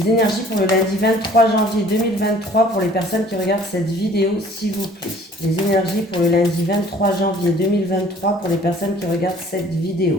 énergies pour le lundi 23 janvier 2023 pour les personnes qui regardent cette vidéo, s'il vous plaît. Les énergies pour le lundi 23 janvier 2023 pour les personnes qui regardent cette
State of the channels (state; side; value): normal; both; correlation 0.53